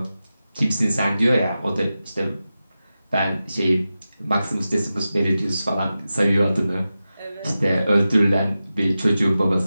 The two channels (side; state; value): both; inverted; correlation -0.93